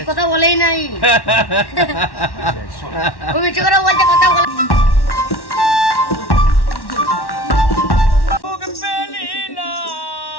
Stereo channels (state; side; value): late; right; 1.1 ms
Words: কথা বলেই নাই। দিচ্ছে। ও মিছে করে বলছে কথা বলে। সুখ পেলি না